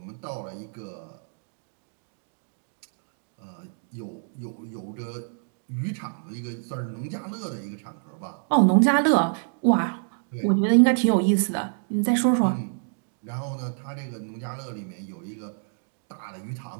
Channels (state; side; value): silent; left; digital silence